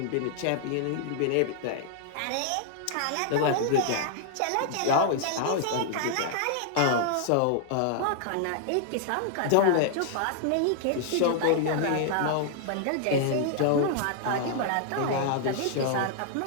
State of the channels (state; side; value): different; both; correlation 0.00